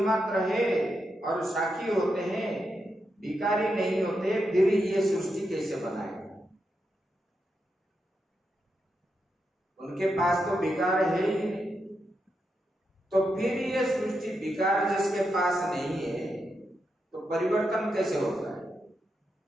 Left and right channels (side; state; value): both; normal; correlation 0.85